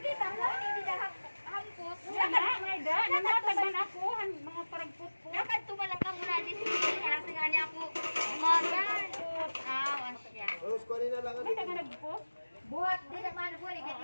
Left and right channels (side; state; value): both; inverted; correlation -1.00